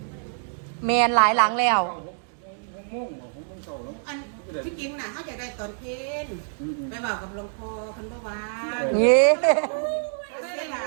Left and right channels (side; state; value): left; silent; digital silence